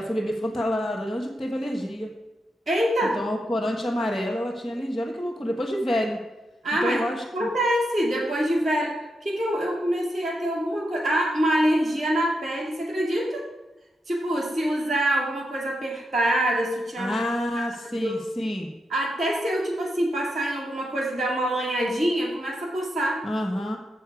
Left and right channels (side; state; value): both; normal; correlation 0.85